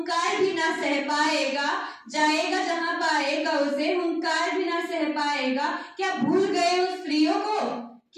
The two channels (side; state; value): both; identical; correlation 1.00